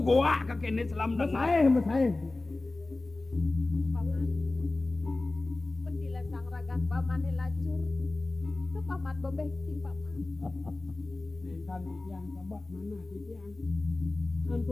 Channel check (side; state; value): right; quieter; 3.1 dB